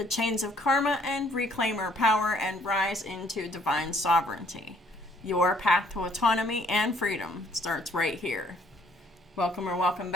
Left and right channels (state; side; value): normal; both; correlation 0.63